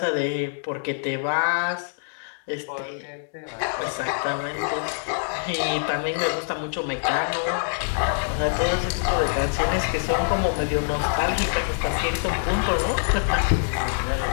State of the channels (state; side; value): silent; right; digital silence